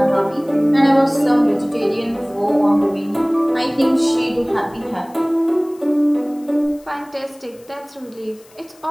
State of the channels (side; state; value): left; noise; hiss, 27 dB below the sound